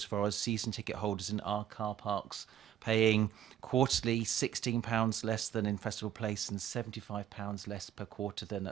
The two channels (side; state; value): left; quieter; 10.6 dB